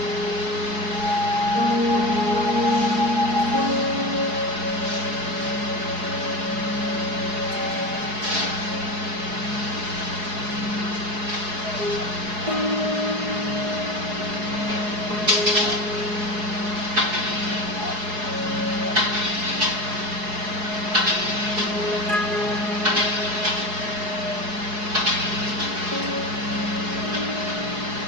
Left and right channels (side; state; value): left; late; 4.7 ms